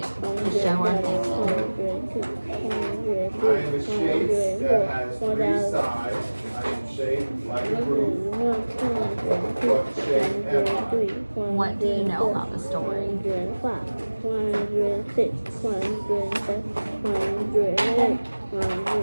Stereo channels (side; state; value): both; inverted; correlation -1.00